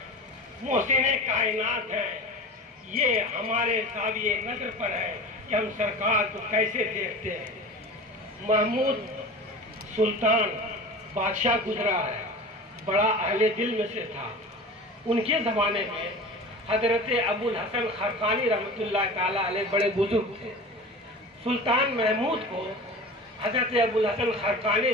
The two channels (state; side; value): normal; both; correlation 0.34